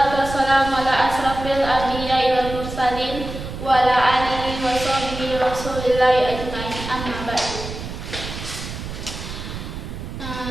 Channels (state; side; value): noise; right; rumble, 8 dB below the sound